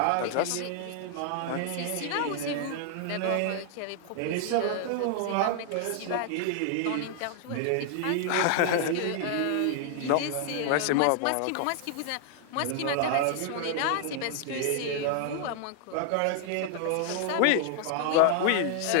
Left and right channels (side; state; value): both; different; correlation 0.00